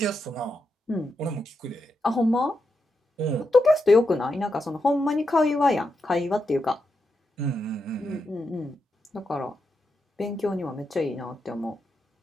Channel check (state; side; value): normal; both; correlation 0.85